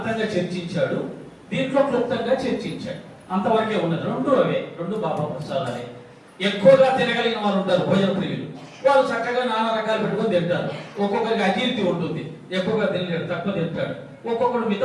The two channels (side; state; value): both; identical; correlation 1.00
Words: చర్చించాడు, దీంట్లో క్లుప్తంగా చర్చించాడు. అంతవరకే ఉన్నది. రెండు బాబా ప్రసాదాలే. ఎక్కువగా తినగలిగిన వాళ్ళు ఉంటారు, భోజన ప్రియులు. వాళ్ళు చక్కగా నానా రకాలు పెట్టుకొని తింటారు. ఒక్కొక్కరికి అజీర్తి ఉంటుంది, ఎక్కువగా తినలేడు, తక్కువ తింటాడు. ఒక్కొక్కడు